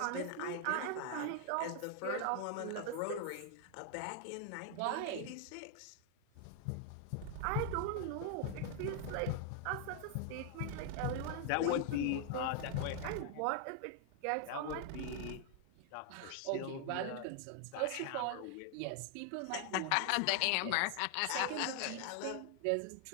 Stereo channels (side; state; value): both; different; correlation 0.00